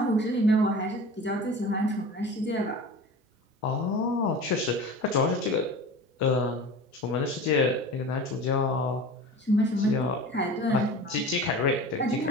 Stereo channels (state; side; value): normal; both; correlation 0.36